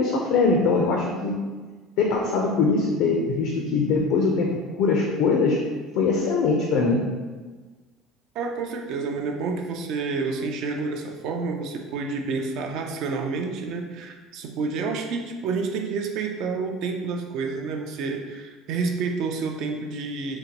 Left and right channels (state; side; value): normal; both; correlation 0.30